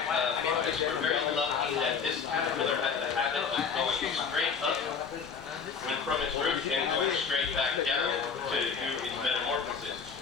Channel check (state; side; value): quieter; right; 6.1 dB